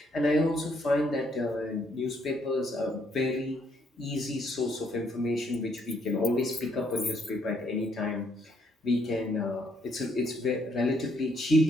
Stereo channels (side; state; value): both; normal; correlation 0.70